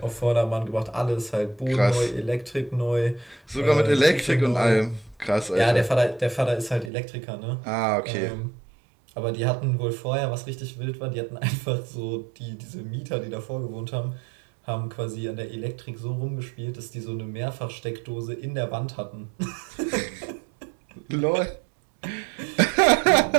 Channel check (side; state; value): left; drops out; at 6.9 s